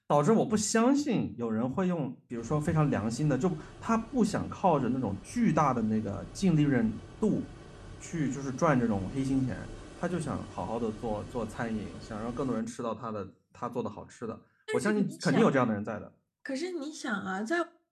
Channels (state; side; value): identical; both; correlation 1.00